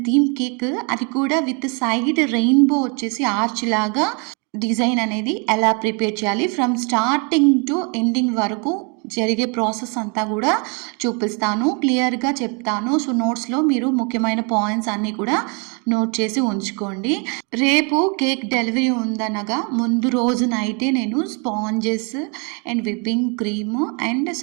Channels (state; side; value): quieter; left; 34.6 dB